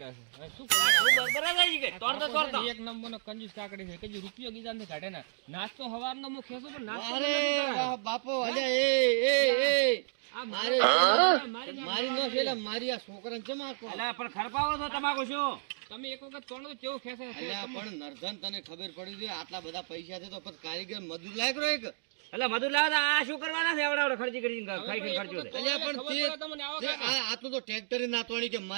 છે હવે શું કરું એક નંબરનો કંજૂસ કાકડી છે કજી રૂપિયો ગીધા ને કાઢે ના નાસ્તો હવારનો મુ ખેસું પણ નાસ્તો અરે વાહ બાપો અલે એ આ મારી નો છે મારી આ છોકરાને ચમાકો અલા પણ ખરપાવો છો તમાકુ શું તમે એક વખત તોણો કેવું ખેસે છે અલ્યા પણ નરધન તને ખબર પડી ગઈ આટલા બધા પૈસા છે તો પછી કારીગર મજૂર લાયક રહ્યો એક અલા મધુર લાવા આ શું કરવાના છે એવડા ખર્ચી કરી ખાઈ ખાઈ ખર્ચો છે અલ્યા પણ તે આ તો ટ્રેક્ટર નાતવાણી કે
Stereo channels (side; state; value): left; silent; digital silence